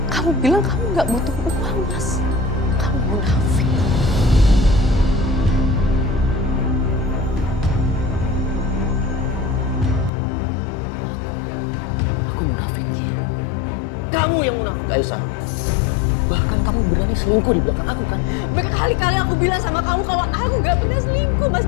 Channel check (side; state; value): right; drops out; at 10.1 s